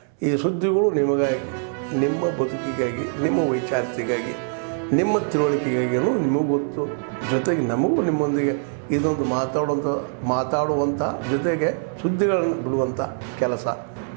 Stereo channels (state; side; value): silent; left; 63 dB below the other